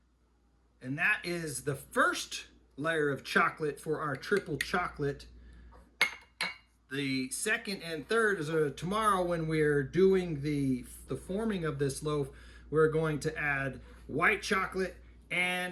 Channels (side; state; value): both; identical; correlation 1.00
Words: And that is the first layer of chocolate for our triple chocolate. The second and third is tomorrow when we're doing the forming of this loaf. We're going to add white chocolate